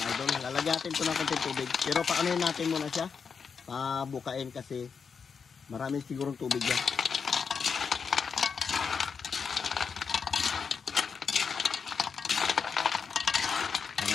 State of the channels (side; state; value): right; quieter; 5.9 dB